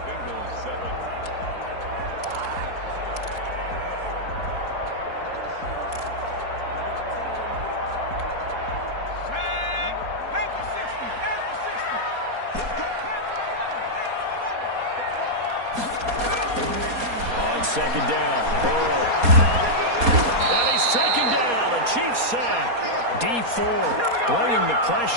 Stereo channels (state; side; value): late; left; 4.2 ms